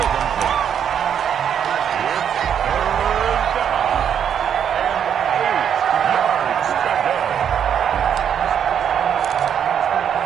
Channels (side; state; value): left; quieter; 8.5 dB